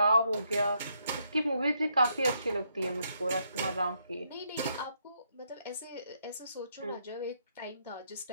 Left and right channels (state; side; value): inverted; both; correlation -0.76